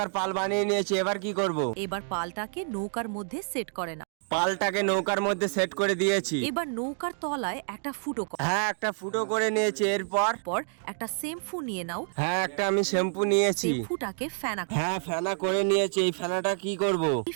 পাল বানিয়ে নিয়েছি, এবার কি করব? এবার পালটাকে নৌকার মধ্যে সেট করে নাও। পালটাকে নৌকার মধ্যে সেট করে দিয়েছি। এবার নৌকার তলায় একটা ফুটো করো। হ্যাঁ, একটা ফুটো করে নিয়েছি। এরপর পর একটা শ্যাম্পু নিয়ে নাও। হ্যাঁ, একটা আমি শ্যাম্পু নিয়েছি। শ্যাম্পুটাকে ফেনা করো। হ্যাঁ, ফেনা করে নিয়েছি। এই ফেনাটা কি করব? এই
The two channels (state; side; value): silent; left; 59 dB below the other